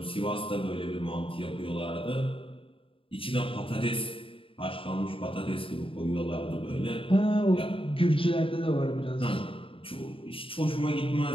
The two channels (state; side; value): late; right; 0.26 ms